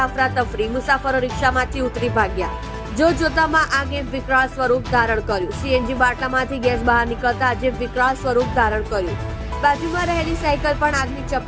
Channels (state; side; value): identical; both; correlation 1.00